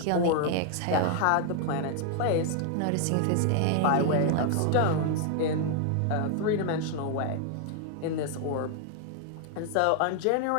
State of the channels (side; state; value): both; different; correlation 0.00